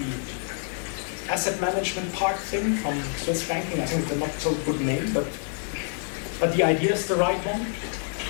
asset management park thing from Swiss banking. I think it's a not so good name, but the idea is the right one.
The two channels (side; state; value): right; silent; 60 dB below the other